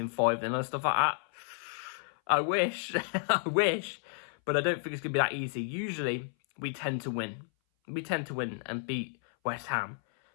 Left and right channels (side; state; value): right; silent; 57 dB below the other